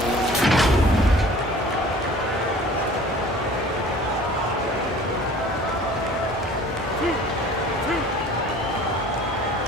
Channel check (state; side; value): normal; both; correlation 0.47